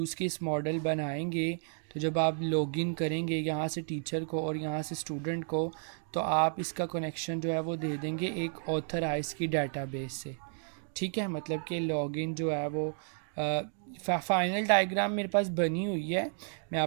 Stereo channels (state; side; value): silent; left; 56 dB below the other